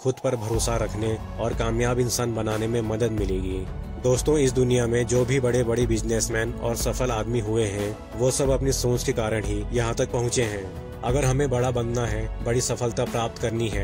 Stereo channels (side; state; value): both; identical; correlation 1.00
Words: पर भरोसा रखने और कामयाब इंसान बनाने में मदद मिलेगी। दोस्तों, इस दुनिया में जो भी बड़े बड़े बिजनेसमैन और सफल आदमी हुए हैं वो सब अपनी सोच के कारण ही यहाँ तक पहुँचे हैं। अगर हमें बड़ा बनना है, बड़ी सफलता प्राप्त करनी